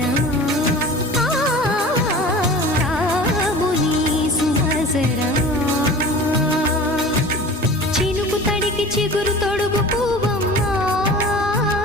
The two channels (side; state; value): both; normal; correlation 0.39